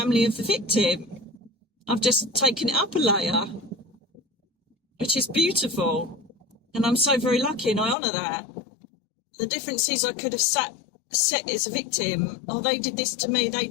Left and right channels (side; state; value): right; drops out; at 8.0 s